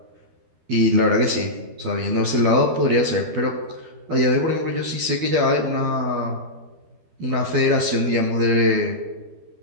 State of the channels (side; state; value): left; late; 12 ms